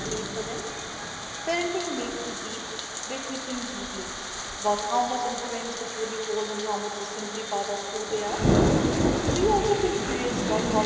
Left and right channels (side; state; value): both; identical; correlation 1.00